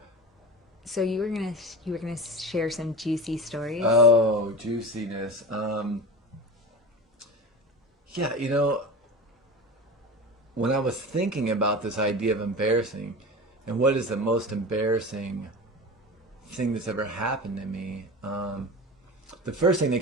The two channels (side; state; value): both; normal; correlation 0.30